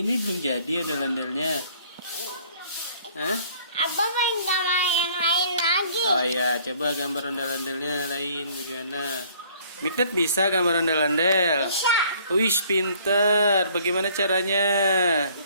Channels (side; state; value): both; inverted; correlation -0.57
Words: belum jadi ondel-ondelnya. Hah? Abah pengen gambar yang lain lagi. Oh iya, coba gambar ondel-ondelnya lain bagaimana? Mikdad bisa gambar ondel-ondel? Bisa. Wih, pinter. Bagaimana caranya?